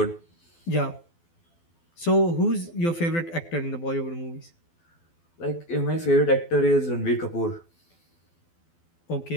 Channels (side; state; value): right; late; 12 ms